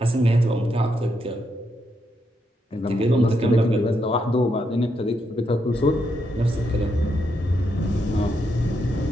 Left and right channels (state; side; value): normal; both; correlation 0.80